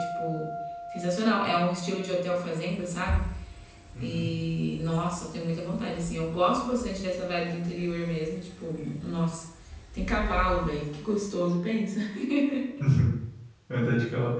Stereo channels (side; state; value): both; identical; correlation 1.00